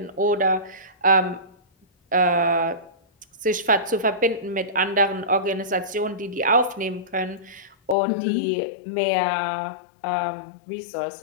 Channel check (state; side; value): drops out; right; at 8.0 s